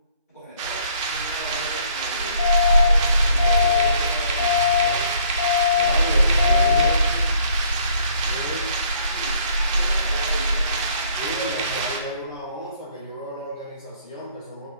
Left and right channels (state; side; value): inverted; both; correlation -0.61